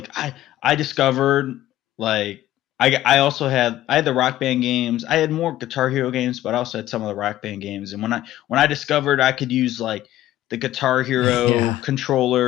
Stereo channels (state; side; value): quieter; right; 14.1 dB